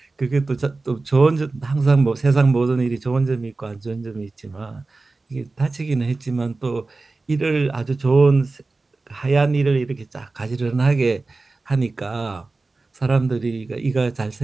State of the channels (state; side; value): quieter; left; 3.6 dB